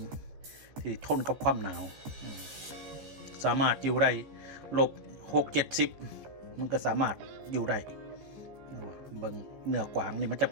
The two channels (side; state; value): left; late; 14 ms